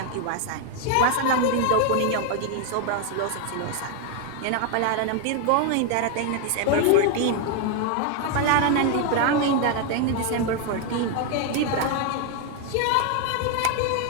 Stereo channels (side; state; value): both; different; correlation 0.01